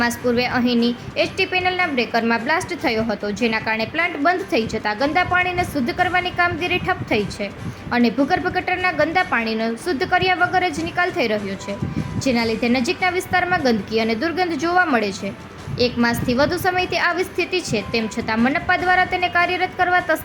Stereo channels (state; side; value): identical; both; correlation 1.00